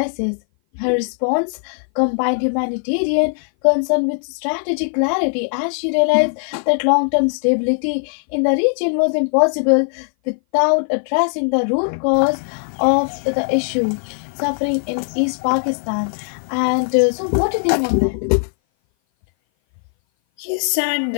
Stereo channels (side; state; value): right; silent; 58 dB below the other